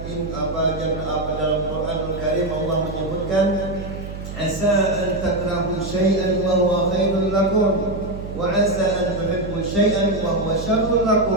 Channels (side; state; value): right; noise; hum, 9 dB below the sound